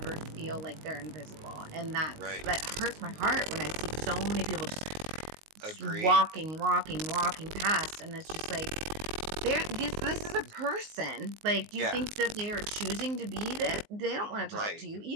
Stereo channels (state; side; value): late; left; 19 ms